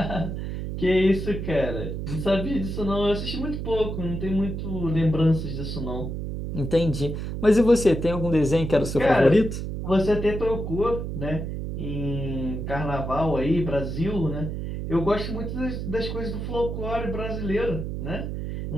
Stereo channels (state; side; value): noise; right; hum, 5 dB below the sound